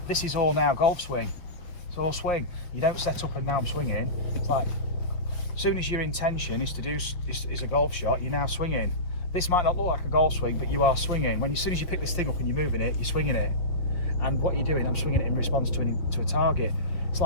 this is all now golf swing. It's all swing. You don't set up and now I'm swinging. It's like, as soon as your intention is to do is a golf shot, you're now swinging. This might not look like a golf swing, but you are swinging. As soon as you pick this thing up and you're moving it, you're swinging it. And what you're doing, I'm swinging it in response to a target. It's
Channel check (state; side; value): late; right; 5.2 ms